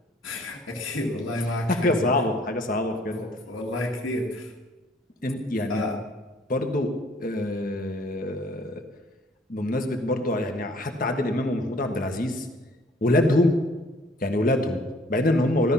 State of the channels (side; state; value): both; normal; correlation 0.57